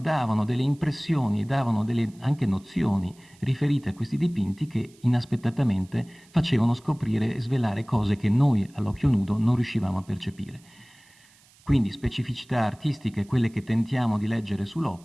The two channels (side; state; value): right; noise; hiss, 29 dB below the sound